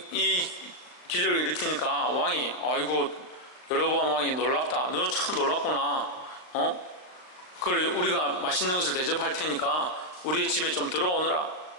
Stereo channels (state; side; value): late; right; 39 ms